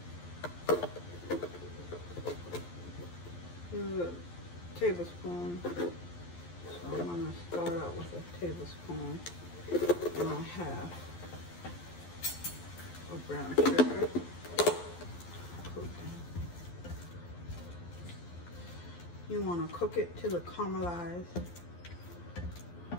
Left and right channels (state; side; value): late; right; 12 ms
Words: this is a tablespoon. So I'm gonna start out with a tablespoon and a half of brown sugar. You want to cook it till it caramelizes.